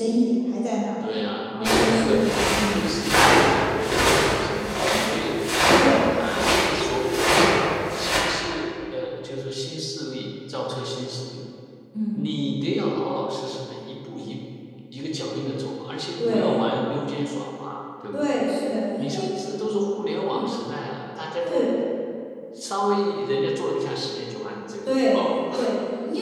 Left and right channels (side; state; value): both; identical; correlation 1.00